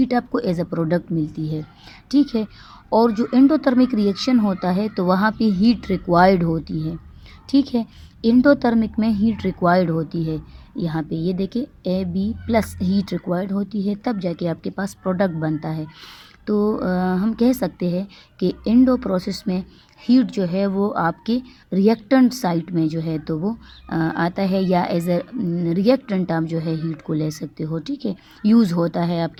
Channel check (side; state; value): both; identical; correlation 1.00